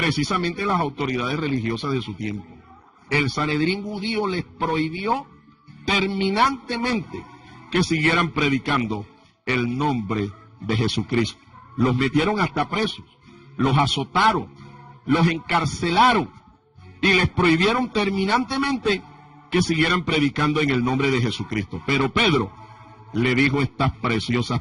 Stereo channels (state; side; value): identical; both; correlation 1.00